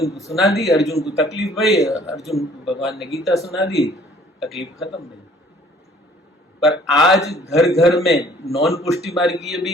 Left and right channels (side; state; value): both; normal; correlation 0.56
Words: को सुना दी, अर्जुन को तकलीफ हुई, अर्जुन को भगवान ने गीता सुना दी, तकलीफ खत्म नहीं। पर आज घर घर में नॉन पुष्टि मार्गीय